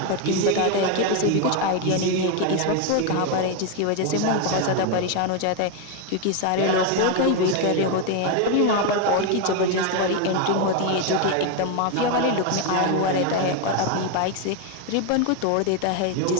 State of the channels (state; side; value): different; both; correlation 0.01